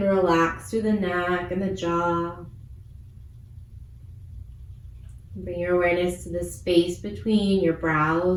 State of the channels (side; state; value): both; identical; correlation 1.00